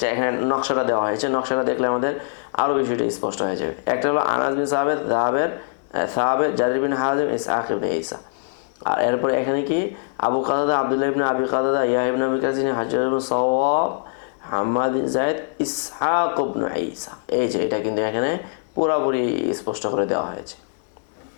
এখানে নকশাটা দেওয়া হয়েছে, নকশাটা দেখলে আমাদের আরও বিষয়টা স্পষ্ট হয়ে যাবে। একটা হলো আনাস বিন সাহাবের জারির বিন হাজিম ইসহাক ইবনে ঈসা। আর এরপরে এখানে কি আবু কাতাদা আব্দুল্লাহ ইবনে আবি কাতাদা ইয়াহইয়া ইবনে আবি কাসির হাজ্জাজ ইবনে সাওয়াব হাম্মাদ বিন যায়েদ ইসহাক ইবনে ঈসা। এই যে এটা কিন্তু এখানে পুরোপুরি স্পষ্ট করে দেওয়া হয়েছে।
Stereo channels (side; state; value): right; silent; digital silence